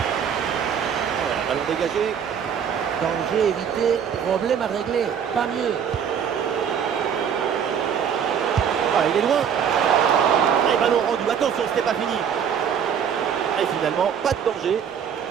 Ballon dégagé. Danger évité, problème à régler, pas mieux. Ah, il est loin. Et ballon rendu, attention, c'était pas fini. Et finalement, pas de danger.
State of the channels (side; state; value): left; quieter; 7.9 dB